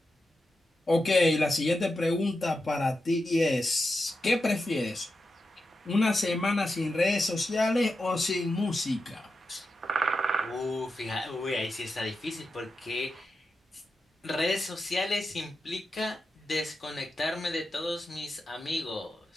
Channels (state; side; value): normal; both; correlation 0.89